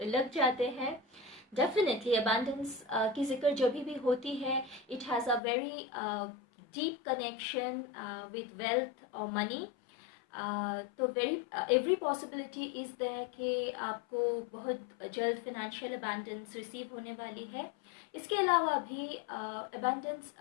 लग जाते हैं। डेफिनेटली अबांडेंस की जिक्र जब भी होती है, it has a very deep connection with wealth और मनी। तो एवरी पॉसिबिलिटी इज़ देयर कि आपको बहुत जल्द फिनेंशियल अबंडेंस रिसीव होने वाली है। इसके अलावा भी अबंडेंस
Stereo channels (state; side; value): drops out; right; at 5.4 s